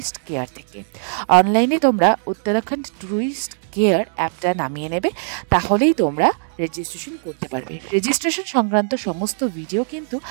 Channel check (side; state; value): left; silent; digital silence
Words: কেয়ার থেকে। অনলাইনে তোমরা উত্তরাখণ্ড ট্যুরিস্ট কেয়ার অ্যাপটা নামিয়ে নেবে, তাহলেই তোমরা রেজিস্ট্রেশন করতে পারবে। রেজিস্ট্রেশন সংক্রান্ত সমস্ত ভিডিও কিন্তু